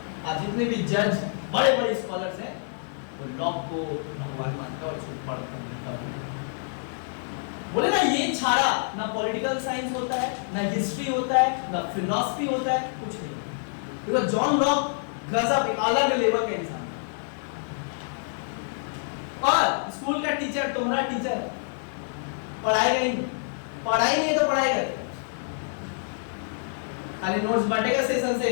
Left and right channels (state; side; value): silent; right; digital silence